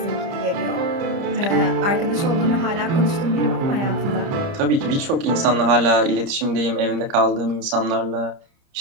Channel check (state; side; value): late; left; 30 ms